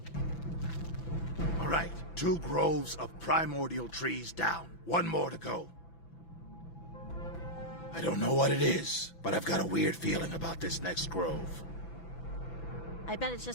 All right, 2 groves of primordial trees down. 1 more to go. I don't know what it is, but I've got a weird feeling about this next grove. I bet it's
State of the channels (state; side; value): late; right; 6.0 ms